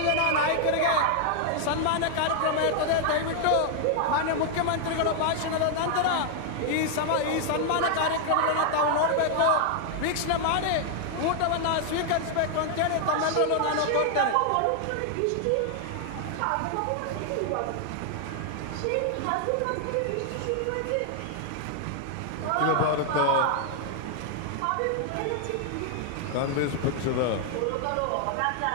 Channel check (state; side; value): different; both; correlation 0.00